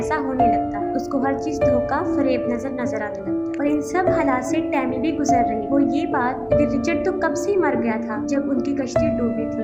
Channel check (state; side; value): identical; both; correlation 1.00